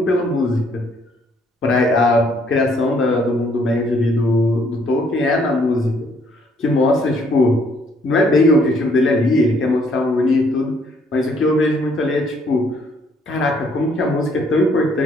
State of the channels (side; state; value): both; normal; correlation 0.66